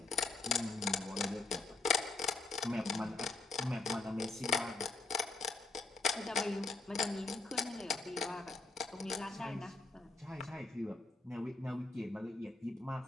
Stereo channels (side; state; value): right; quieter; 3.4 dB